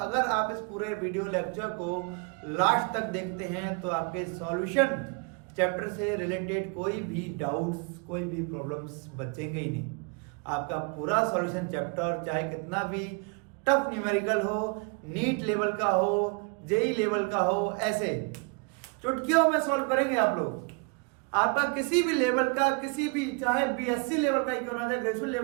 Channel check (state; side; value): quieter; left; 34.3 dB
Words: आप इस पूरे वीडियो लेक्चर को लास्ट तक देखते हैं तो आपके सॉल्यूशन चैप्टर से रिलेटेड कोई भी डाउट्स, कोई भी प्रॉब्लम्स बचेंगे ही नहीं। आपका पूरा सॉल्यूशन चैप्टर, चाहे कितना भी टफ न्यूमेरिकल हो, नीट लेवल का हो, जेई लेवल का हो, ऐसे चुटकियों में सॉल्व करेंगे आप लोग। आपका किसी भी लेवल का, किसी भी, चाहे बीएससी लेवल का ही क्यों ना जाए, ग्रेजुएट